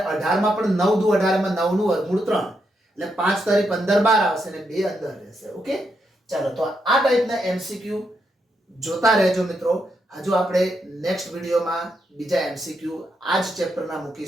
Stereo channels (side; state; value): both; normal; correlation 0.81